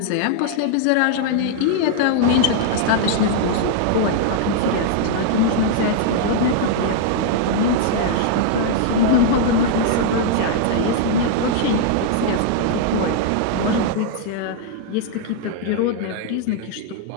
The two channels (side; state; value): both; different; correlation -0.01